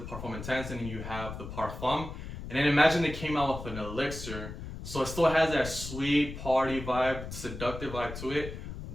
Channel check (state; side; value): noise; left; rumble, 9 dB below the sound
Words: Intense, and then you have the Parfum. And then imagine they came out with an Elixir. So it still has that sweet party vibe, seductive vibe to it,